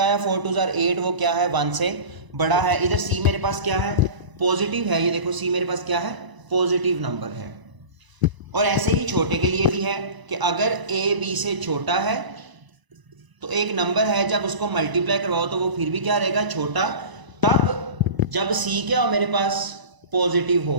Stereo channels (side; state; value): left; late; 1.0 ms